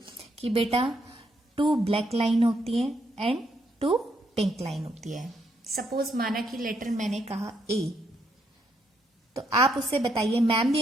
कि बेटा 2 ब्लैक लाइन होती है एंड 2 पिंक लाइन होती है। सपोज माना कि लेटर मैंने कहा ए, तो आप उससे बताइए, मैम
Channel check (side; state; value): both; normal; correlation 0.75